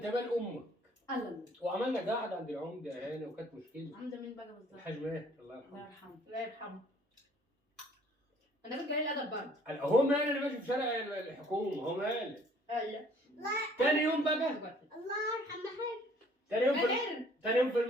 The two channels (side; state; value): both; normal; correlation 0.58